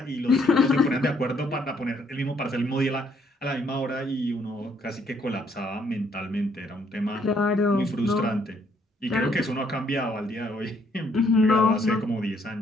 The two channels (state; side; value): normal; both; correlation 0.68